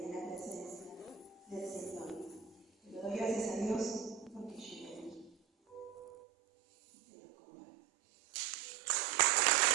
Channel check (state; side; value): drops out; left; at 6.1 s